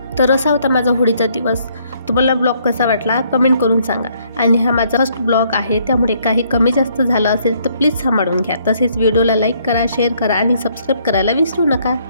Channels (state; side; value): inverted; both; correlation -0.67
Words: तर असा होता माझा होळीचा दिवस. तुम्हाला ब्लॉग कसा वाटला कमेंट करून सांगा. आणि हा माझा फर्स्ट ब्लॉग आहे, त्यामुळे काही कमी जास्त झालं असेल तर प्लीज सांभाळून घ्या. तसेच व्हिडिओला लाईक करा, शेअर करा आणि सबस्क्राईब करायला विसरू नका.